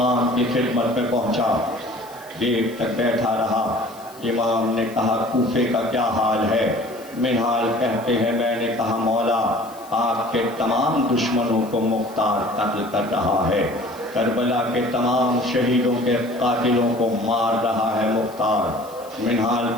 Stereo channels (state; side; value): noise; left; hiss, 22 dB below the sound